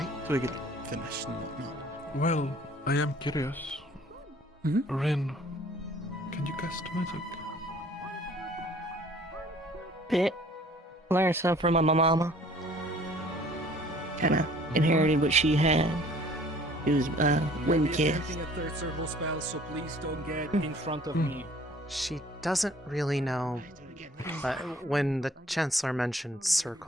So we get finished and whatnot. Well, I am curious. Ren, can you cast magic? Bit. Learned something from my mama. Kinda inherited what she had. It was wind kiss. Attempting a third circle spell, so please don't get in front of me. She doesn't really know, but when the Chancellor mentioned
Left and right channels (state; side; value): normal; both; correlation 0.54